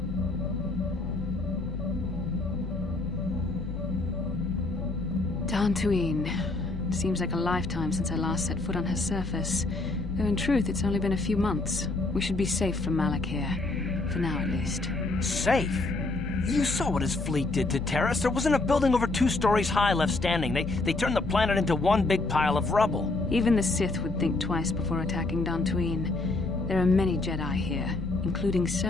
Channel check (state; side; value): quieter; right; 3.1 dB